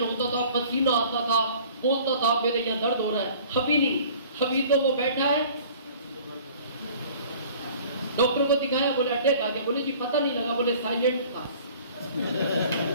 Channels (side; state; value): both; inverted; correlation -0.49